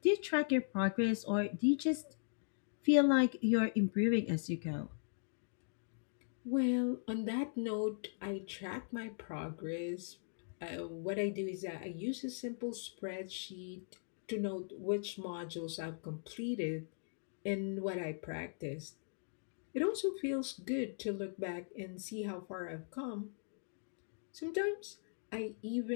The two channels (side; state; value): right; silent; digital silence